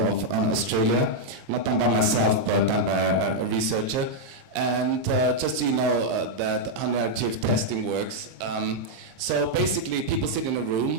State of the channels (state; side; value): late; left; 23 ms